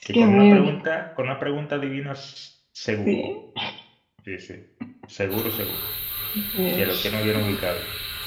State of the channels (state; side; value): identical; both; correlation 1.00